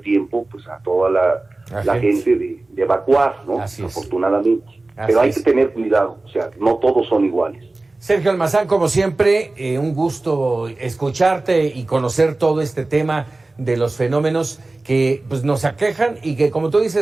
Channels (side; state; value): left; quieter; 3.1 dB